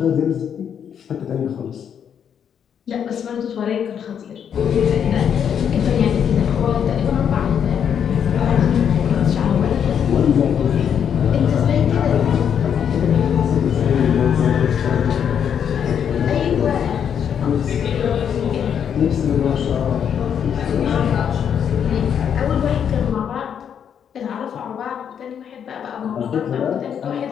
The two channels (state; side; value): quieter; right; 8.2 dB